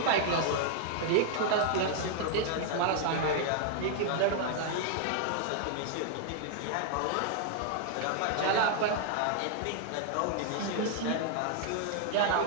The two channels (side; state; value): both; different; correlation 0.00